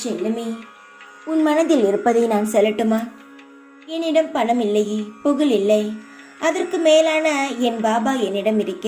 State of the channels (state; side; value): identical; both; correlation 1.00